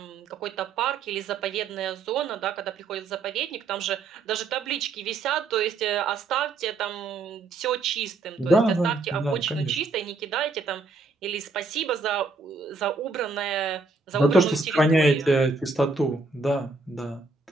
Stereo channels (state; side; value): quieter; left; 3.8 dB